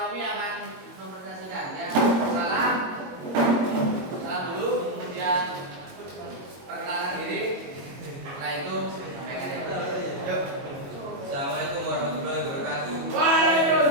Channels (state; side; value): late; left; 22 ms